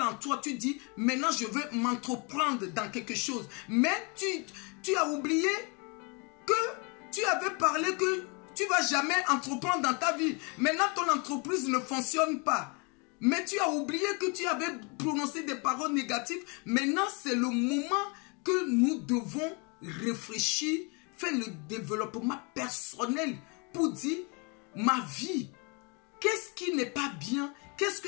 en toi. Tu dis, maintenant je veux m'entreprendre dans quelque chose. Mais tu as oublié que tu avais parlé que tu ne vas jamais entreprendre dans ta vie. Maintenant, ton entreprise ne fonctionne pas. Mais tu as oublié que tu avais prononcé des paroles négatives. Maintenant, c'est le moment que nous devons réfléchir, faire le développement personnel pour dire, ma vie, qu'est-ce qui n'est pas bien? Qu'est-ce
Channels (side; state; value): right; quieter; 32.2 dB